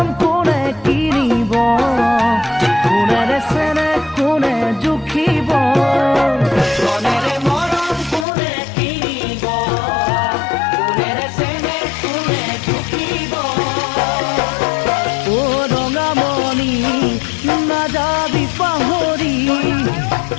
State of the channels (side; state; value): right; drops out; at 8.2 s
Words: কোনে কিনিব, কোনেৰে চেনে কোনে জুখিব। ধনেৰে মৰম কোনে কিনিব, কোনেৰে চেনে কোনে জুখিব। অ ৰঙামণি নাযাবি পাহৰি,